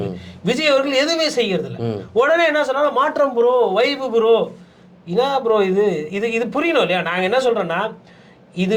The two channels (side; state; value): both; identical; correlation 1.00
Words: விஜய் அவர்கள் எதுவுமே செய்யறது இல்ல. உடனே என்ன சொன்னாலும் மாற்றம் ப்ரோ, வைபு ப்ரோ, என்ன ப்ரோ இது இது இது புரியணும் இல்லையா? நாங்க என்ன சொல்றோம்னா, இது